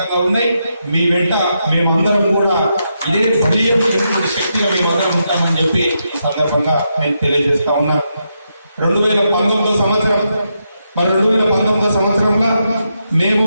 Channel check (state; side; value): inverted; both; correlation -0.83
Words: ఉన్నాయి. మీ వెంట మేమందరం కూడా ఇదే బలీయం శక్తిగా మేమందరం ఉంటామని చెప్పి ఈ సందర్భంగా నేను తెలియజేస్తా ఉన్నాను. 2019 సంవత్సరం, మరి 2019 సంవత్సరంలో మేము